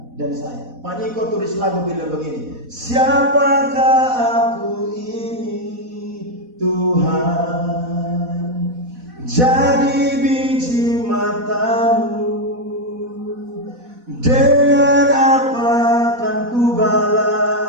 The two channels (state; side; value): late; left; 4.1 ms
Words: dan saya. Pak Niko tulis lagu bilang begini, siapakah aku ini Tuhan, jadi biji matamu, dengan apa